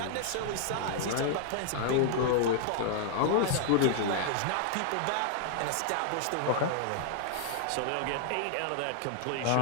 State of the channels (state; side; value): different; both; correlation 0.00